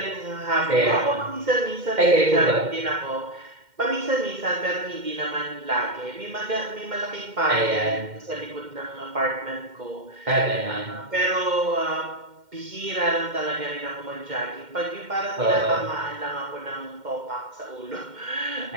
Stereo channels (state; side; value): late; left; 2.1 ms